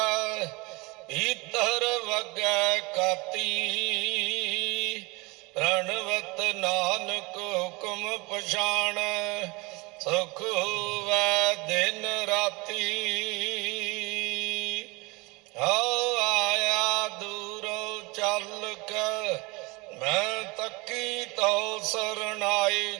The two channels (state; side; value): quieter; left; 25.6 dB